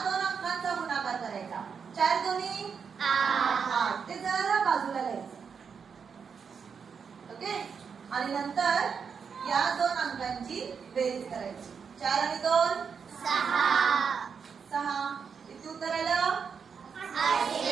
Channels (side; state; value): left; quieter; 6.3 dB